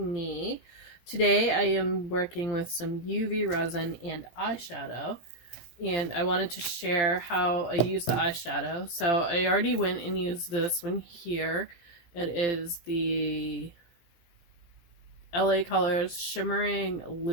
Today I am working with some UV resin and eyeshadow, and I wanted to share how I use the eyeshadow. So I already went and used this one here. It is the LA Colors Shimmering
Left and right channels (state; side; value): late; right; 17 ms